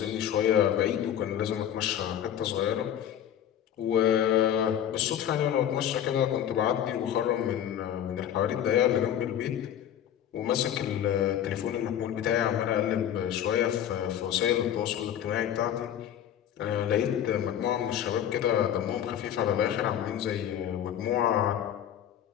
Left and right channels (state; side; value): quieter; right; 10.2 dB